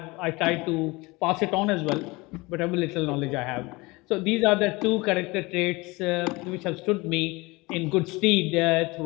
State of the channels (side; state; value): right; quieter; 23.6 dB